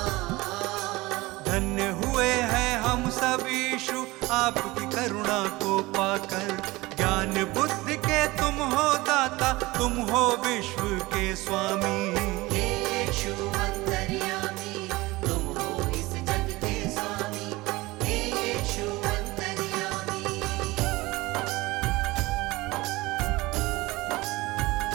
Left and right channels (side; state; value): left; quieter; 20.9 dB